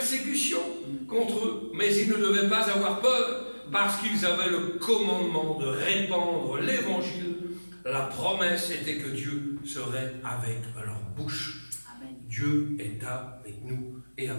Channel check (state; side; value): inverted; both; correlation -1.00